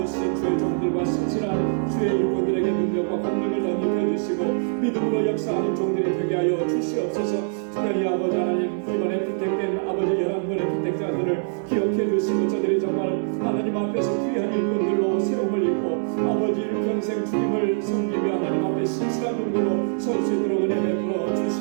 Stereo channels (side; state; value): left; silent; digital silence